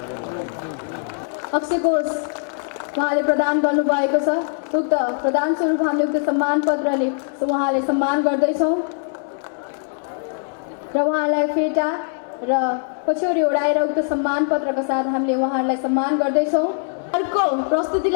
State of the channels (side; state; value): right; silent; 65 dB below the other